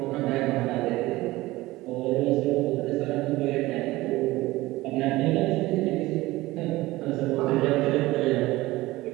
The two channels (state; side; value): quieter; left; 18.9 dB